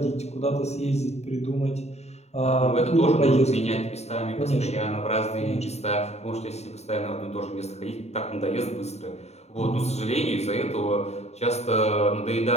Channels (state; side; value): late; right; 0.32 ms